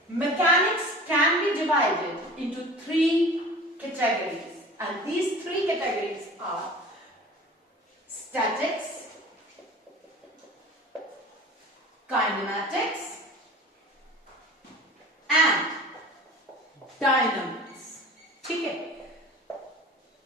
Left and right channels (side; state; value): both; normal; correlation 0.41